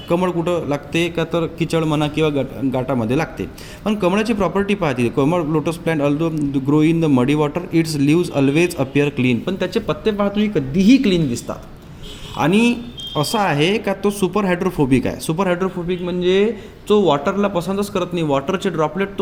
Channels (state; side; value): identical; both; correlation 1.00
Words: कमळ कुठं लागते का तर किचड म्हणा किंवा गाटामध्ये लागते. पण कमळाची प्रॉपर्टी पाहते, कमळ lotus plant although grow in the muddy water its leaves always appear clean. पण त्याचे पत्ते पहा तुम्ही कधीही क्लीन दिसतात. आणि असं आहे का तो सुपर हायड्रोफोबिक आहे. सुपर हायड्रोफोबिक म्हणजे तो वॉटरला पसंतच करत नाही, वॉटरचे ड्रॉपलेट